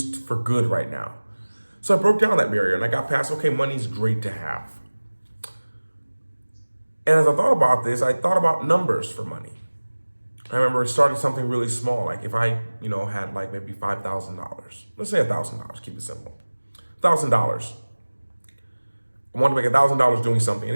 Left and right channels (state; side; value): inverted; both; correlation -1.00